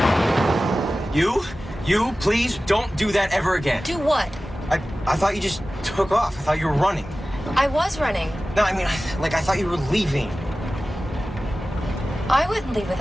You, please don't do that ever again. Do what? I thought you just took off. I thought you were running. I was running. No, I mean, I thought you were leaving. I wouldn't leave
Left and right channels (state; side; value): normal; both; correlation 0.96